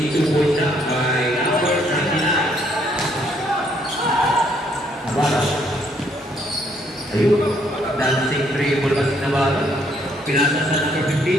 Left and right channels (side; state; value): both; normal; correlation 0.68